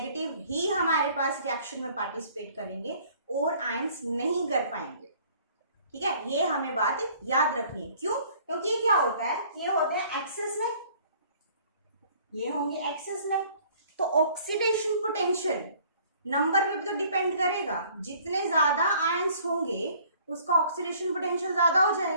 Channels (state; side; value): inverted; both; correlation -0.56